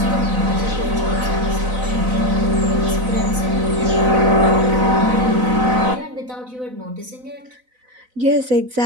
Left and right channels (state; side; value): late; left; 4.0 ms